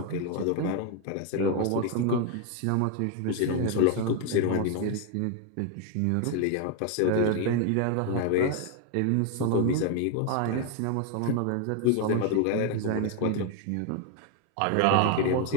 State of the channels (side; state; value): both; different; correlation 0.01